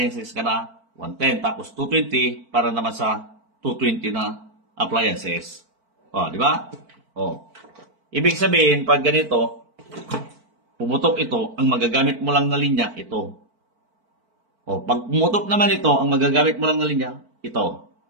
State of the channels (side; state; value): left; late; 4.5 ms